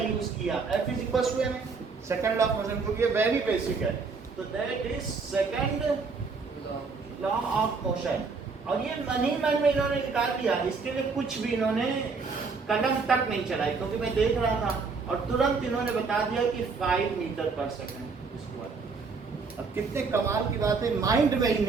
किया? F is equal to m, second law of motion, क्योंकि ये वेरी बेसिक है। तो that is second law of motion. और ये मन ही मन में इन्होंने निकाल दिया, इसके लिए कुछ भी इन्होंने कदम तक नहीं चलाई, क्योंकि मैं देख रहा था और तुरंत इन्होंने बता दिया कि 5 मीटर पर सेकंड स्क्वायर। अब कितने कमाल की बात है, माइंड में ही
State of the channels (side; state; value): left; quieter; 4.6 dB